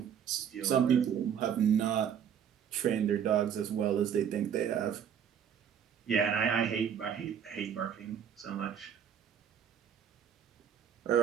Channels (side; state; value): left; quieter; 8.5 dB